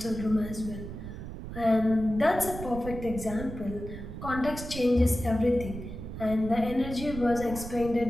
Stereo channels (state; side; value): noise; right; rumble, 9 dB below the sound